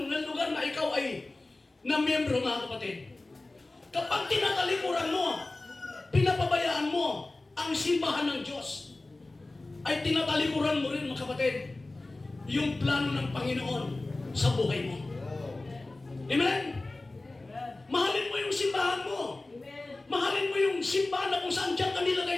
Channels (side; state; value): right; quieter; 3.0 dB